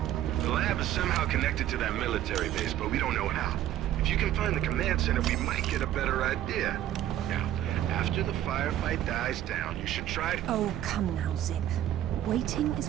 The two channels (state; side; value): quieter; left; 12.4 dB